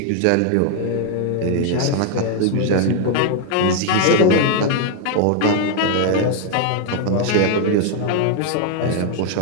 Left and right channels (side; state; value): both; different; correlation 0.00